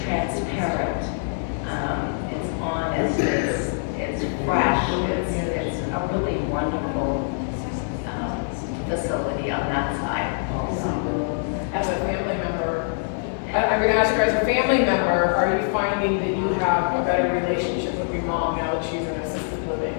transparent. It's honest. It's fresh. It's a really wonderful facility on that side. As a family member, I'm gonna ask her, as a family member, are you finding that you have a better relationship with your mom now that she's in assisted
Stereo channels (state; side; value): silent; right; digital silence